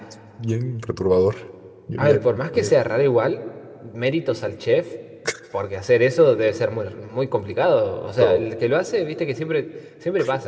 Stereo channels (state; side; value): identical; both; correlation 1.00